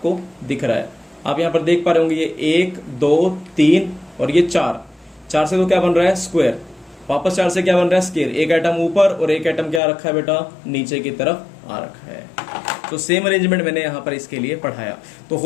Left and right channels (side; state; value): right; drops out; at 9.8 s